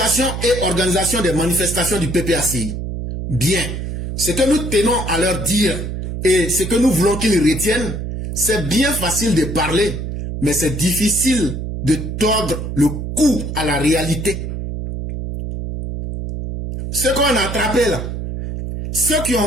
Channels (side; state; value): right; noise; hum, 5 dB below the sound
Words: et organisation des manifestations du PPACI. Bien, ce que nous tenons à leur dire et ce que nous voulons qu'ils retiennent, c'est bien facile de parler, mais c'est difficile de tordre le cou à la réalité. Ceux qu'on a attrapés là, ceux qui